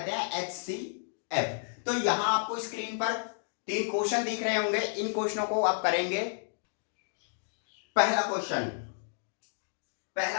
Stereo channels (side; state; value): right; silent; digital silence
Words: हैं एचसीएफ। तो यहां आपको स्क्रीन पर 3 क्वेश्चन दिख रहे होंगे, इन क्वेश्चनों को आप करेंगे। पहला क्वेश्चन